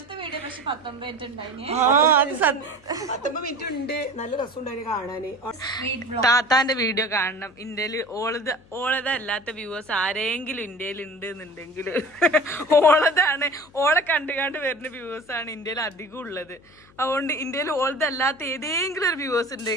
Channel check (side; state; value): left; noise; hum, 27 dB below the sound